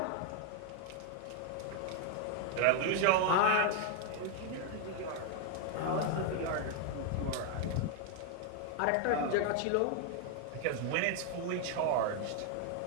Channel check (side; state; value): both; different; correlation 0.01